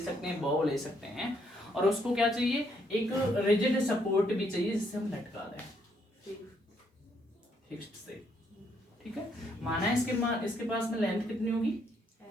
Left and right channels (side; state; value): both; normal; correlation 0.72